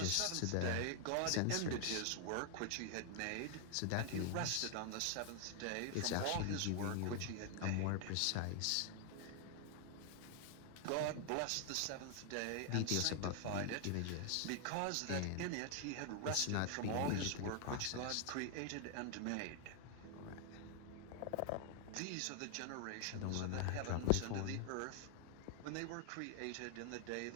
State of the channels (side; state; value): both; different; correlation 0.00